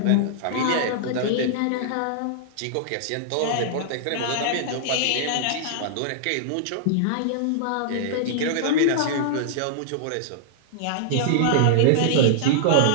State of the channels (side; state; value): both; different; correlation -0.01